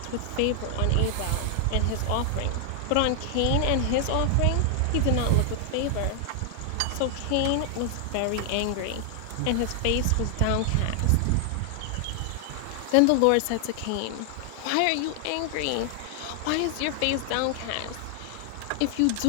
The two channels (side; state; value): both; different; correlation 0.00